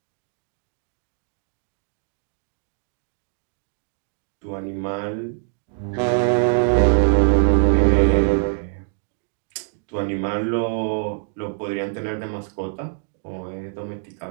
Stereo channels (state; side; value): silent; left; digital silence